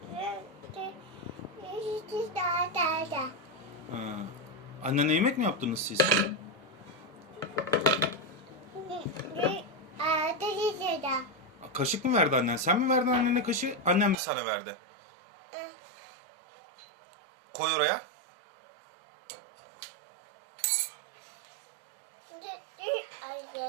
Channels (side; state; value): left; drops out; at 14.2 s